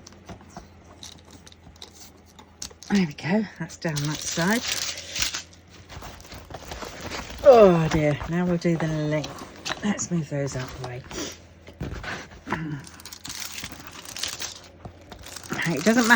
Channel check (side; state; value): both; identical; correlation 1.00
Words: There we go, that's down that side. Oh dear, now we'll do the length. Let's move those out of the way. It doesn't